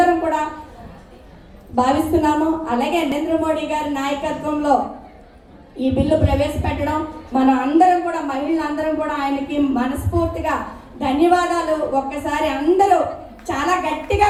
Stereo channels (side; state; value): both; identical; correlation 1.00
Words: కూడా భావిస్తున్నాము. అలాగే నరేంద్ర మోడీ గారి నాయకత్వంలో ఈ బిల్లు ప్రవేశపెట్టడం మనం అందరం కూడా మహిళలందరం కూడా ఆయనకి మనస్ఫూర్తిగా ధన్యవాదాలు. ఒక్కసారి అందరూ చాలా గట్టిగా